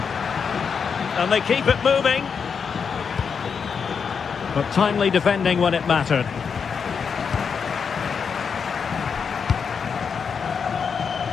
And they keep it moving. But timely defending when it mattered.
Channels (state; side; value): quieter; right; 6.2 dB